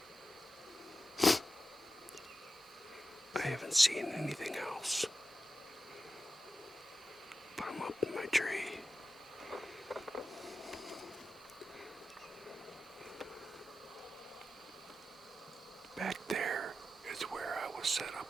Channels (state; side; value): normal; both; correlation 0.92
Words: I haven't seen anything else, but I'm up in my tree. Back there is where I was set up